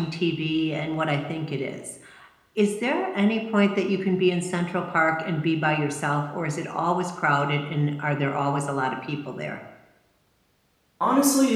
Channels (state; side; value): identical; both; correlation 1.00